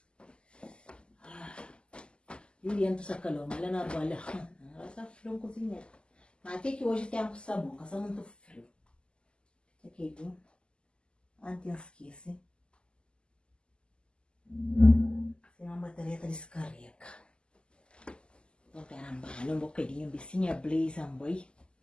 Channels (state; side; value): late; right; 0.050 ms